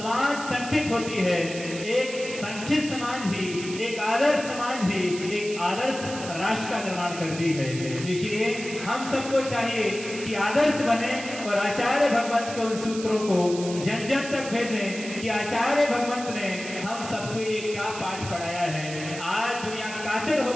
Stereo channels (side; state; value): right; noise; hiss, 11 dB below the sound